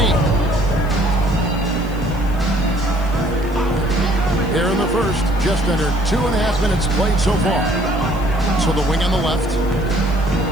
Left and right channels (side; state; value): right; noise; hiss, 25 dB below the sound